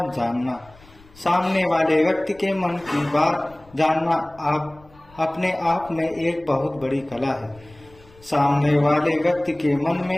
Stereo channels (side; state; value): left; noise; rumble, 26 dB below the sound